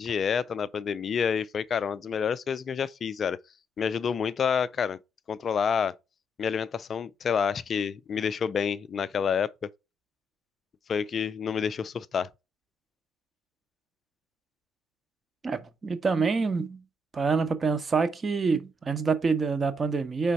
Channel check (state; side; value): normal; both; correlation 0.76